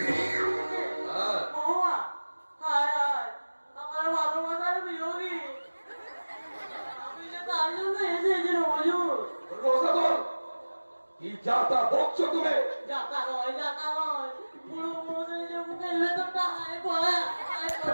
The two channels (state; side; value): inverted; both; correlation -1.00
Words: হ্যাঁ, মহুয়া, হায় হায়, আমার ভালোবাসার বিয়োগী। আমি যে তার জন্য এসেছিলাম হুজুর। রোজাদল, কি যাতা বকছো তুমি? যাতা নয়, পুরো মনে যে মুখের ভেতরটা আয় পড়ে